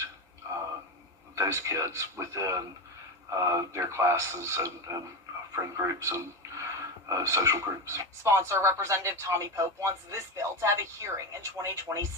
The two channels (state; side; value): normal; both; correlation 0.17